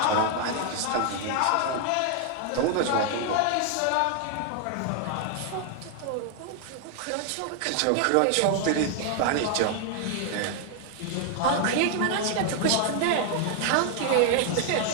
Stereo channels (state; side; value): different; both; correlation 0.00